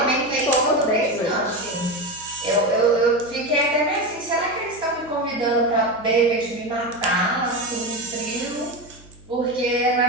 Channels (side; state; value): left; noise; hum, 20 dB below the sound